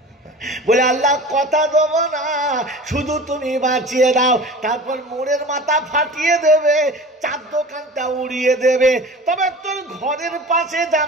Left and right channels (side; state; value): both; normal; correlation 0.38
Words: বলে আল্লাহ কথা দেবো না, শুধু তুমি বাঁচিয়ে দাও। তারপর মোড়ের মাথা ফাটিয়ে দেবে, চার দোকানটা উড়িয়ে দেবে, তবে তোর ঘরের পাশে